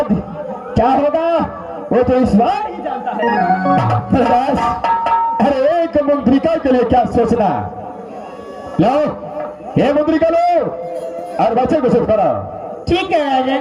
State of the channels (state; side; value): identical; both; correlation 1.00